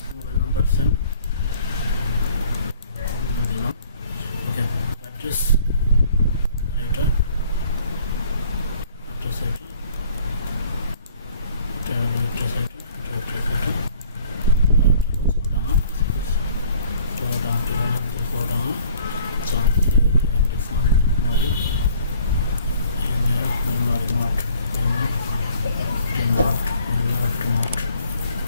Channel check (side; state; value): both; inverted; correlation -0.55